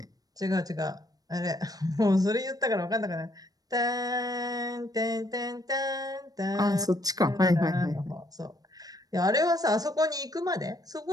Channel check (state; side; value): late; left; 0.18 ms